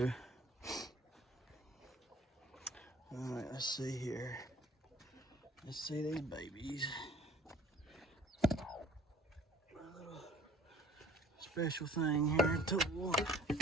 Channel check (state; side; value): normal; both; correlation 0.53